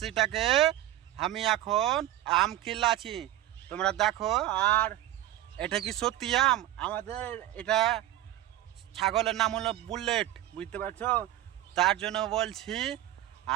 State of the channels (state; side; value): quieter; left; 14.2 dB